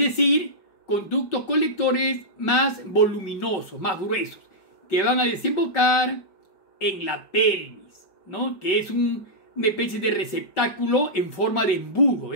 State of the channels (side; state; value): right; late; 5.1 ms